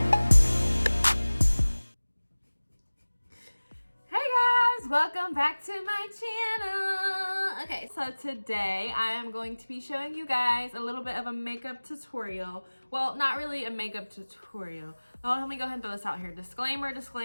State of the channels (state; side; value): inverted; both; correlation -1.00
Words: Welcome back to my channel. Okay, so today I am going to be showing you guys a little bit of a makeup tutorial. Well, not really a makeup tutorial. Oh, let me go ahead and throw this out here. Disclaimer,